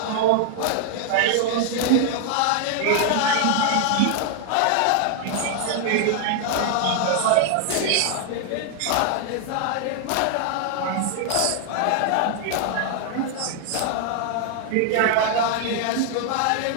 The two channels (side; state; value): both; different; correlation 0.00